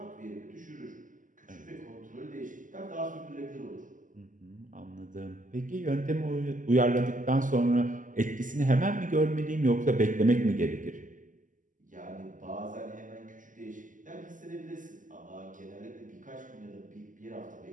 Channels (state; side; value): late; left; 0.38 ms